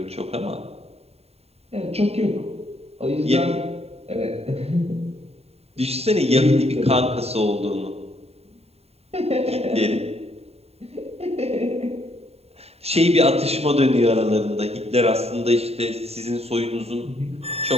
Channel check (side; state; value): left; late; 0.30 ms